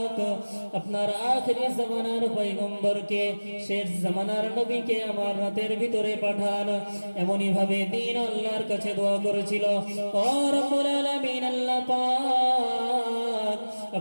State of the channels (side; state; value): both; inverted; correlation -1.00